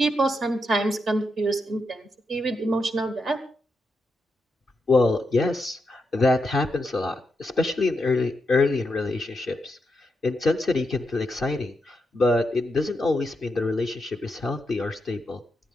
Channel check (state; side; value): normal; both; correlation 0.84